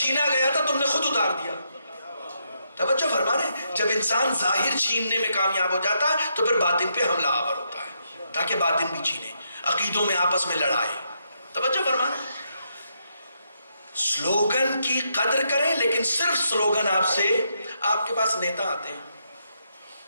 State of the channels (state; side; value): inverted; both; correlation -0.78